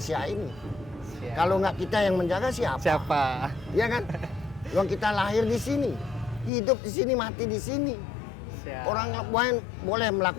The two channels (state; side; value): drops out; right; at 6.5 s